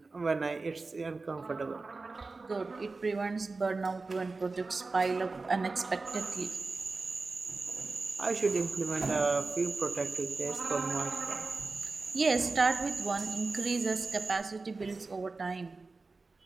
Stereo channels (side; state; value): left; quieter; 3.8 dB